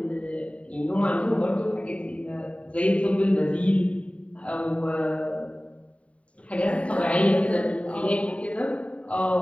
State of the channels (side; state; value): right; late; 0.064 ms